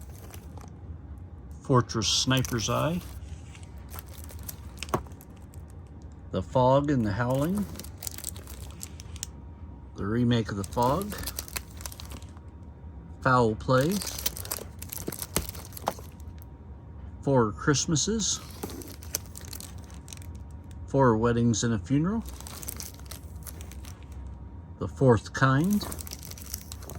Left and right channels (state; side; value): identical; both; correlation 1.00